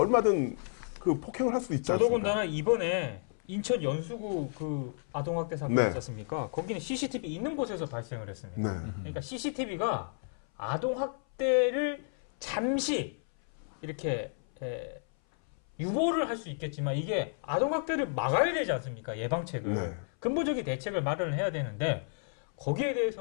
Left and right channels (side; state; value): right; silent; 57 dB below the other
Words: 그 폭행을 할 수도 있지 않습니까? 더더군다나 이번에 인천 연수구 그 아동학대 사건 네. 있지 않습니까? 거기는 CCTV 있는 곳에서 발생을 했습니다. 네. 그러니까 CCTV가 아동학대를 잠시 이렇게 유보를 할 수 있겠지만 이게 아동학대를 막아야 되지 않습니까? 예방책을. 네. 근본적인 대책을 마련을 해야 되는데 거기에